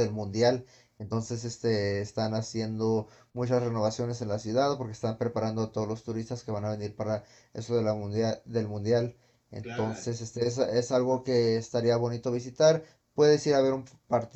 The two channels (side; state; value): both; identical; correlation 1.00